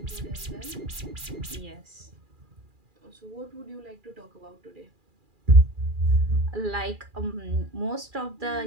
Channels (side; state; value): left; late; 2.4 ms